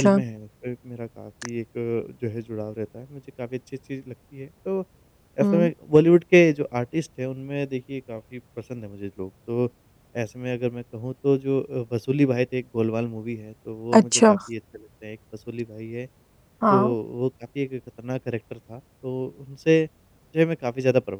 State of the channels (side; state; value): both; identical; correlation 1.00